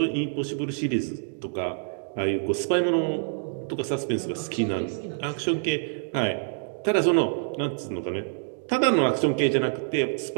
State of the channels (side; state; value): left; silent; digital silence